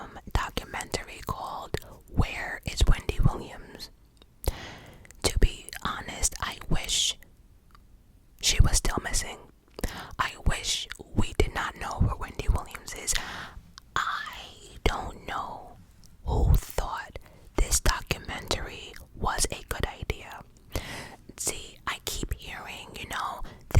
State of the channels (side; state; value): both; identical; correlation 1.00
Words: documentary called Where is Wendy Williams? To be honest, I wish she was still missing. I wish we did not know where Wendy Williams is. I don't know who thought this documentary was a good idea. See, I keep hearing,